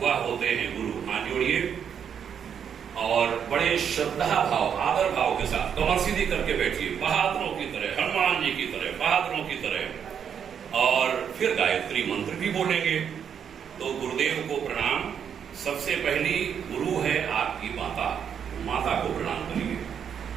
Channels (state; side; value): quieter; left; 7.9 dB